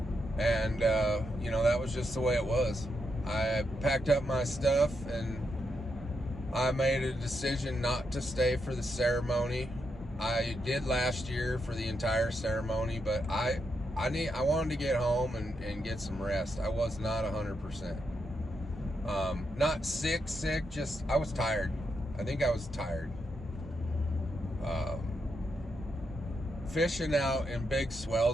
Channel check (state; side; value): normal; both; correlation 0.82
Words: and that was just the way it was. I packed up my stuff and I made a decision not to stay for the ceremony. I did last year for the entire ceremony, but I wanted to get home and get some rest. I was not 100%. Not sick, just I was tired. I think I was tired. Fishing out in big